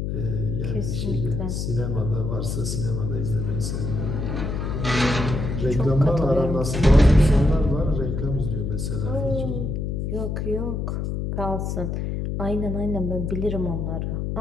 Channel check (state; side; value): noise; left; hum, 2 dB below the sound